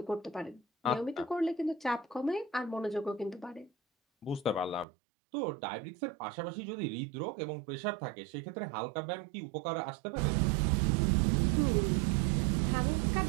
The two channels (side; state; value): left; drops out; at 4.9 s